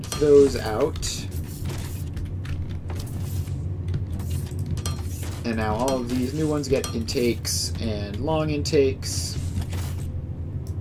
those out. And now all of these new ones get intakes and long intakes.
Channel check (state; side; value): identical; both; correlation 1.00